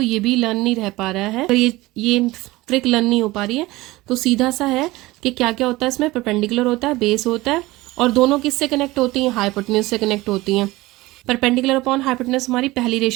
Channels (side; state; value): left; quieter; 19.7 dB